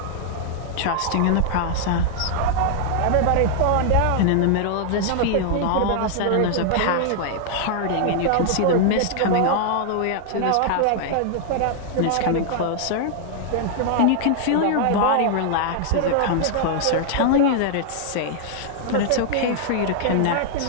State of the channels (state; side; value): different; both; correlation -0.01